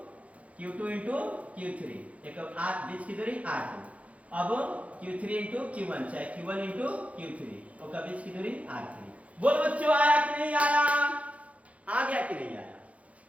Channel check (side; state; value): left; late; 0.066 ms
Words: Q3, एक बीच की दूरी R2, अब Q3 इंटू Q1 चाहे Q1 इंटू Q3 और बीच की दूरी R3। बोल बच्चों, आया कि नहीं आया? आ गया कि नहीं आया?